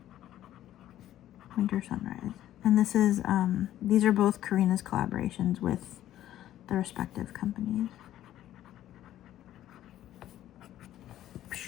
Winter Sunrise. And this is, these are both Karina's collaborations with the respective companies.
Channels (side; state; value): right; quieter; 12.7 dB